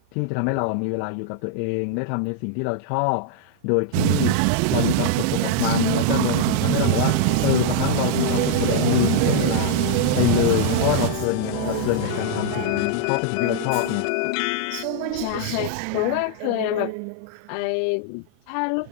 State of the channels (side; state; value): both; different; correlation -0.01